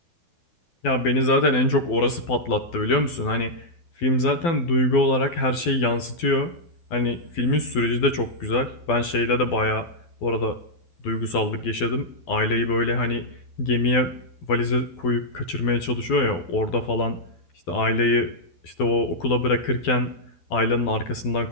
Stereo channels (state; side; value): late; right; 12 ms